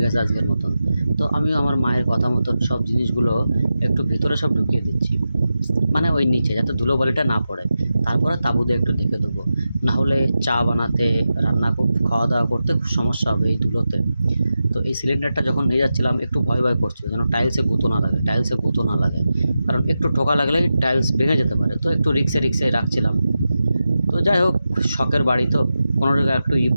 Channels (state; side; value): inverted; both; correlation -0.91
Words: গেছে আজকের মতন। তো আমিও আমার মায়ের কথা মতন সব জিনিসগুলো একটু ভিতরে সব ঢুকিয়ে দিচ্ছি, মানে ওই নিচে যাতে ধুলোবালিটা না পড়ে। তারপরে তাঁবু দিয়ে একটু ঢেকে দেবো, না হলে চা বানাতে, খাওয়া দাওয়া করতে খুব সমস্যা হবে এই ধুলোতে। তো এই সিলিন্ডারটা যখন নিয়ে যাচ্ছিলাম একটু ভয় ভয় করছিল, যেন টাইলসে গুঁতো না লাগে। কারণ একটু ঠোকা লাগলেই টাইলস ভেঙে যেতে পারে, তো একটু রিক্সে রাখছিলাম। তো যাই হোক, শখের বাড়ি তো, কোনো জায়গায় একটু